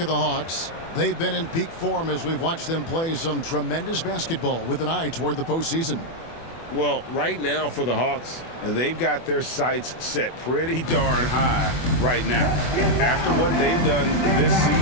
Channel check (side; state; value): right; late; 24 ms